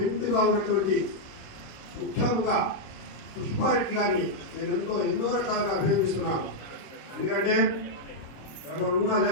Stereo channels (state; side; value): late; right; 26 ms